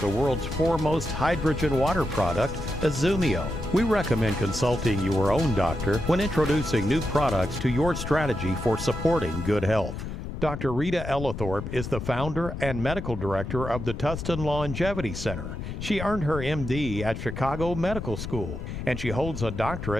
the world's foremost hydrogen water product, IZUMIO. We recommend consulting your own doctor when introducing new products to your strategy for supporting good health. Dr. Rita Ellithorpe is the founder and medical director of the Tustin Longevity Center. She earned her MD at Chicago Medical School, and she holds a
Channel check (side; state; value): left; noise; rumble, 7 dB below the sound